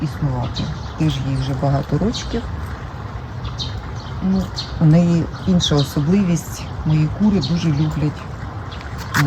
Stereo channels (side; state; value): both; identical; correlation 1.00